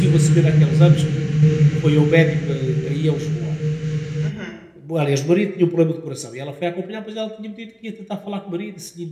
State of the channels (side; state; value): both; identical; correlation 1.00